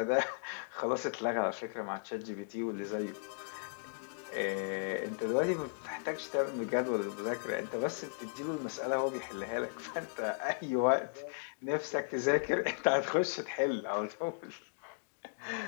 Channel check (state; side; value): silent; right; digital silence